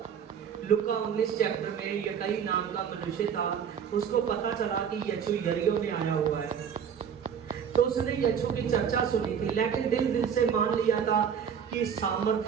लुका 19 चैप्टर में यकई नाम का मनुष्य था, उसको पता चला कि यीशु यरीहो में आया हुआ है, तो उसने यीशु की चर्चा सुनी थी, लेकिन दिल से मान लिया था कि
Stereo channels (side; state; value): left; quieter; 7.7 dB